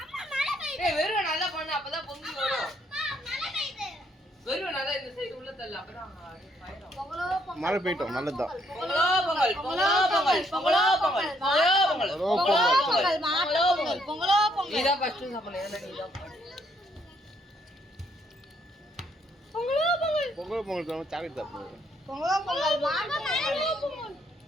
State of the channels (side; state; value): both; normal; correlation 0.70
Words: அம்மா மழை பெய்யுது. ஏய் வெறும் நல்லா பண்ணு அப்பதான் பொங்கி வரும். அம்மா மழை பெய்யுது. வெறும் நல்லா இந்த சைடு உள்ள தள்ள அப்பதான் ஃபயர் பொங்கலோ பொங்கல். மழை பெய்யட்டும் நல்லதுதான். பொங்கலோ பொங்கல் பொங்கலோ பொங்கல் பொங்கலோ பொங்கல் பொங்கலோ பொங்கல் பொங்கலோ பொங்கல் மாட்டு பொங்கல் பொங்கலோ பொங்கல். நீதா ஃபர்ஸ்ட் சாப்பிடணும் ஏன்னா நீதா பொங்கலோ பொங்கல் பொங்கல் பொங்கல் தான் சாக்லேட் சாப்பிடுவோம். பொங்கலோ பொங்கல் மாட்டு பொங்கல்.